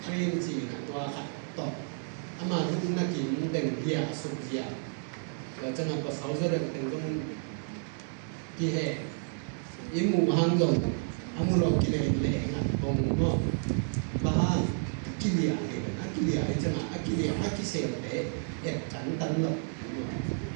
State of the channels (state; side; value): silent; left; 57 dB below the other